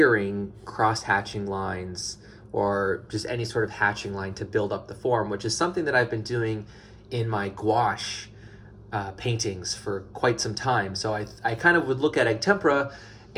cross-hatching lines, or just any sort of hatching line to build up the form, which is something that I've been doing in my gouache paintings for quite some time. So I kind of would look at egg tempera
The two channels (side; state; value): both; identical; correlation 1.00